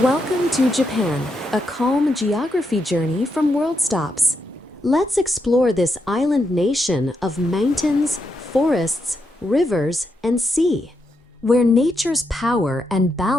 Welcome to Japan, a calm geography journey from World Stops. Let's explore this island nation of mountains, forests, rivers, and sea, where nature's power and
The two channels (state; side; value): normal; both; correlation 0.82